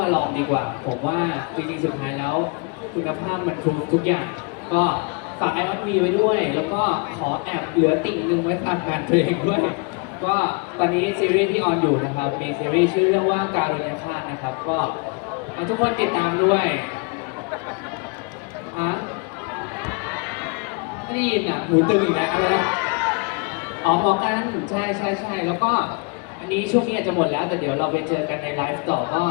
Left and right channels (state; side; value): quieter; right; 32.4 dB